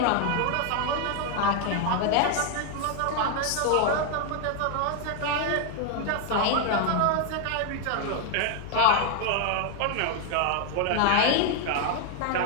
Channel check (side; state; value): both; different; correlation 0.01